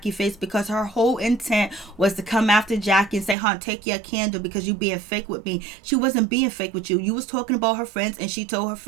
face because her whole intent was to come after Jackie and say, hon, take your candle because you being fake with me. She wasn't being fake with you. You was talking about her friends, and she told her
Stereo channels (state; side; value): drops out; left; at 3.4 s